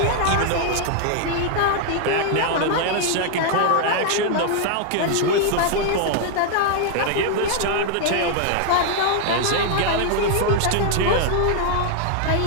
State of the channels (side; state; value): both; different; correlation 0.00